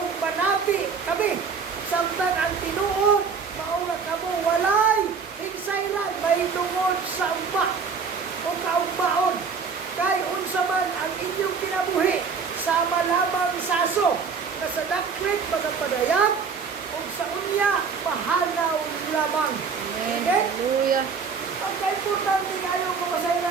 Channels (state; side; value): quieter; left; 5.6 dB